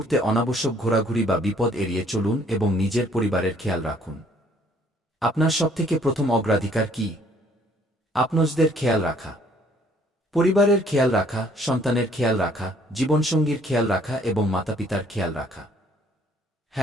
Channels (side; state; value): both; normal; correlation 0.61